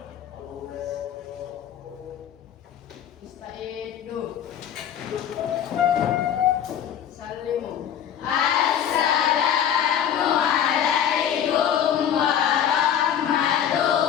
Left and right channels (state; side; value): quieter; right; 9.4 dB